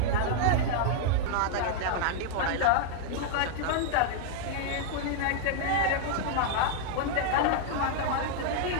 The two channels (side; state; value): both; different; correlation -0.01